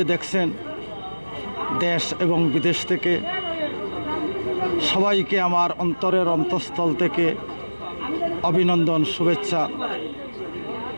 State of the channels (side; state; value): both; inverted; correlation -1.00